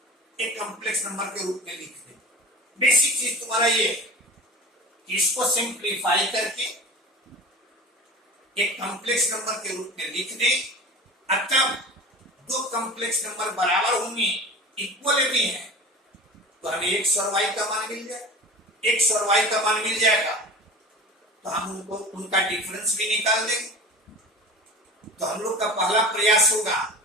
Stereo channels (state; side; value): normal; both; correlation 0.34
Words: एक कॉम्प्लेक्स नंबर के रूप में लिख दें। बेसिक चीज तुम्हारा ये कि इसको सिंप्लीफाई करके एक कॉम्प्लेक्स नंबर के रूप में लिख दें। तब दो कॉम्प्लेक्स नंबर बराबर होंगे, इक्वल भी हैं, तो हमें x और y का मान मिल जाए। x और y का मान मिल जाएगा तो हम उनका डिफरेंस भी निकाल देंगे। तो हम लोग का पहला प्रयास होगा